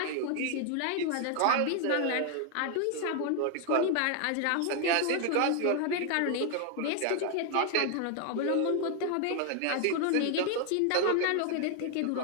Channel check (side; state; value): both; different; correlation 0.00